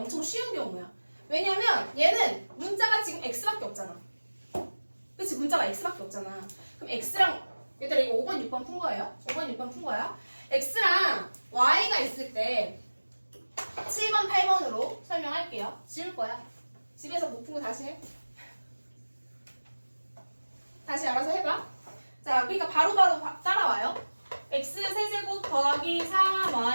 쉬운 경우야. 왜냐면 얘는 문자가 지금 x밖에 없잖아. 그치? 문자가 x밖에 없잖아. 그럼 x랑 얘들아 이거 5번, 6번 푼 거예요. 5번, 6번 푼 거야. x랑 y가 있을 때 7번, 8번으로 설명할게요. 지울 거야. 집에서 못 푼 거 다시 해. 다시 알아서 해봐. 자, 그러니까 바로바로 따라와요. x 세제곱 더하기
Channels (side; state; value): both; inverted; correlation -1.00